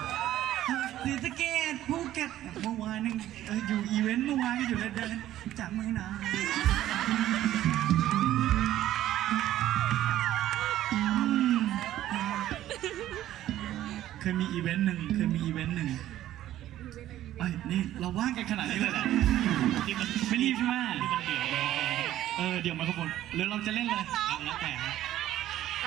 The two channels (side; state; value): left; quieter; 13.3 dB